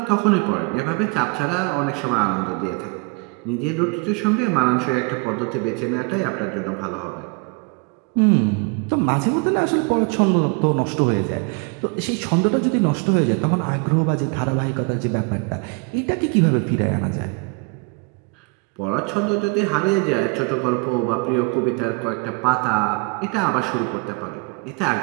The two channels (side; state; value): left; quieter; 31.8 dB